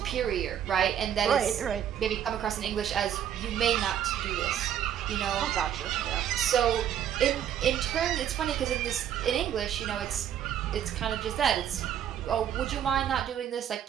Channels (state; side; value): quieter; left; 9.9 dB